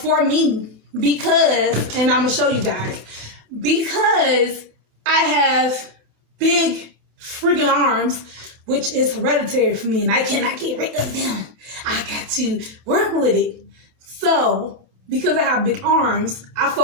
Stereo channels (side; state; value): left; late; 27 ms